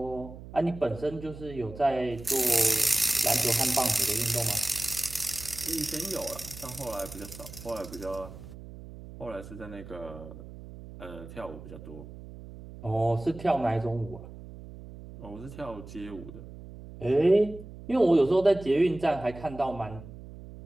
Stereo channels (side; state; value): right; noise; hum, 14 dB below the sound